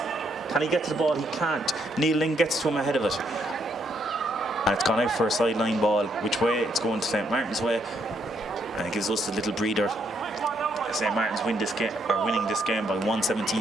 Can he get to the ball? He can't. Neil Ling gets to him ahead of it. And it's gone out for a sideline ball. Which way? It's going to St. Martin's way. And it gives us a little breather. St. Martin's winning this game by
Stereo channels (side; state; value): both; normal; correlation 0.73